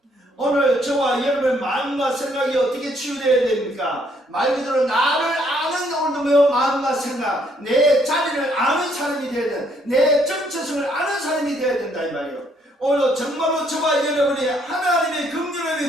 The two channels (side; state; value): both; normal; correlation 0.68